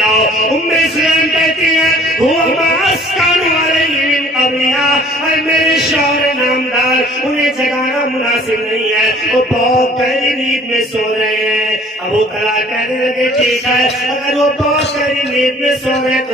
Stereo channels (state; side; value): normal; both; correlation 0.53